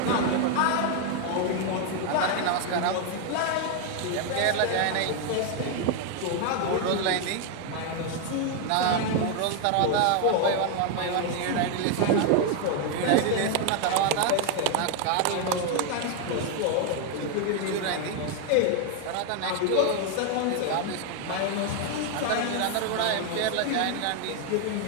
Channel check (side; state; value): both; different; correlation 0.01